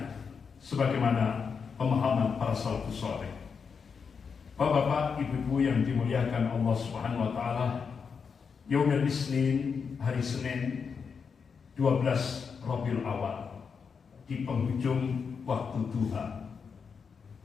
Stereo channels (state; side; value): quieter; right; 5.9 dB